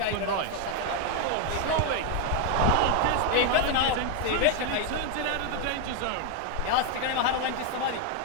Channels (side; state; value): both; different; correlation 0.01